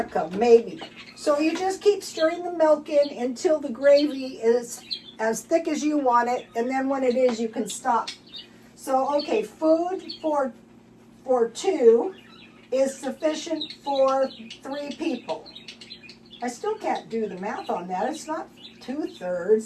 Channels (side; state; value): both; identical; correlation 1.00